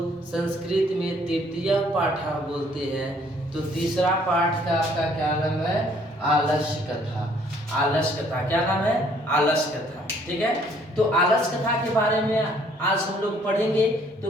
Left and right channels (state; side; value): normal; both; correlation 0.62